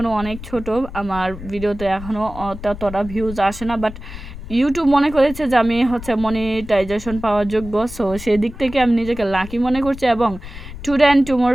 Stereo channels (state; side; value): noise; left; rumble, 13 dB below the sound